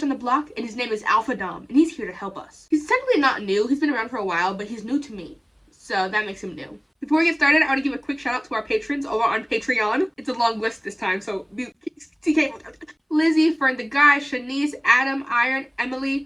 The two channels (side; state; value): both; identical; correlation 1.00